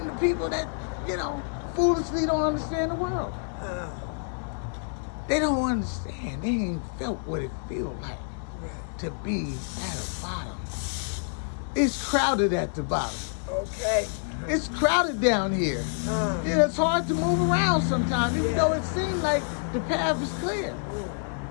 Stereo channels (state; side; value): silent; right; digital silence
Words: people that, you know, foolishly don't understand the world. They don't understand. They ain't felt what it feels like to be at the bottom. It's crowded at the bottom. Okay. It's crowded down here. Yeah, it's hard to move around sometimes, even though it seems like the path is clear.